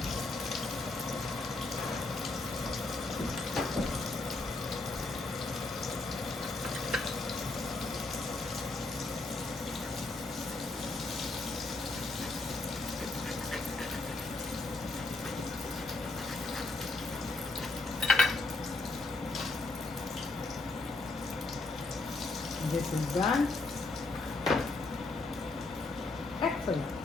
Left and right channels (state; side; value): quieter; right; 3.2 dB